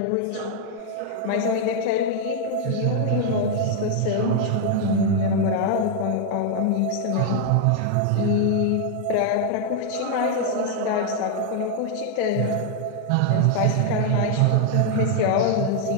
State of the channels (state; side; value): different; both; correlation 0.00